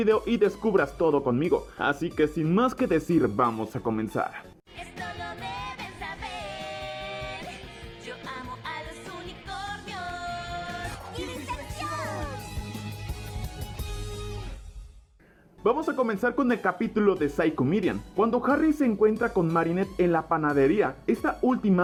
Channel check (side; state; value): both; identical; correlation 1.00